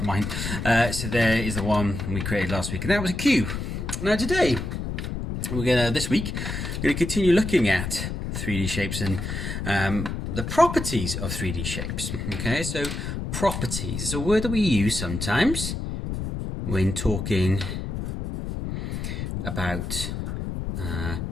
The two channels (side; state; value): left; noise; rumble, 4 dB below the sound